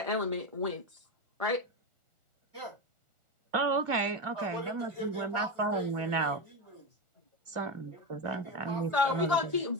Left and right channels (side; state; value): left; late; 1.4 ms